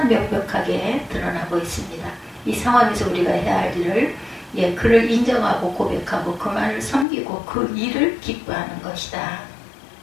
명백하게 드러나고 있습니다. 이 상황에서 우리가 해야 할 일을 그를 인정하고 고백하고 그만을 섬기고 그 일을 기뻐하는 것이다.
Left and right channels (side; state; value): right; drops out; at 7.1 s